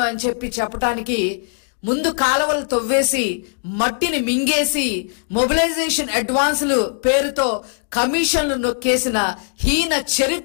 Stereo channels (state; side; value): silent; right; digital silence